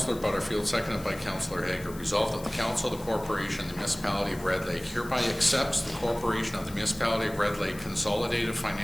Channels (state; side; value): noise; left; hiss, 18 dB below the sound